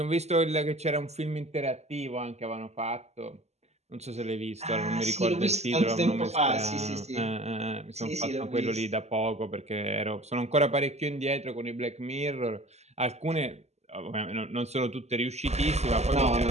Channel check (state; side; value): late; left; 0.32 ms